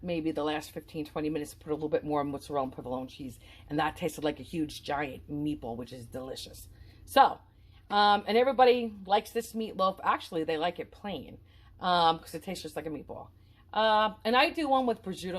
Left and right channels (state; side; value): identical; both; correlation 1.00